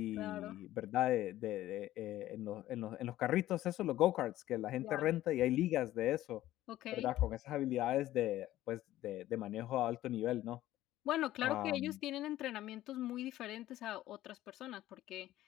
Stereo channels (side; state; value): right; quieter; 14.5 dB